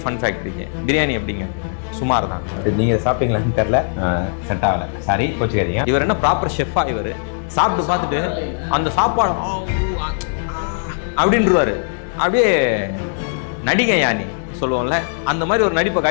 ஃபன் ஃபேக்டரிக்கு பிரியாணி எப்படிங்க, சுமார் தான். நீங்கள் சாப்பிட்டீங்களான்னு தெரில, செட் ஆகலை, சாரி கோச்சுக்காதீங்க. இவர் என்ன ப்ராப்பர் ஷெஃபா? இவர் சாப்பிட்றாரு இல்லைங்களா? அந்த சாப்பாடு அப்படின்றாரு. அப்படியே நடிகை யானி சொல்லுவோம்ல, அந்த மாதிரி ஒரு நடிப்பை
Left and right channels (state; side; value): silent; right; digital silence